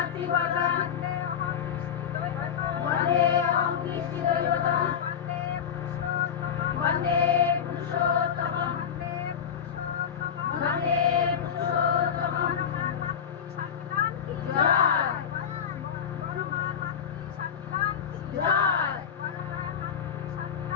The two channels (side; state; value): right; quieter; 8.1 dB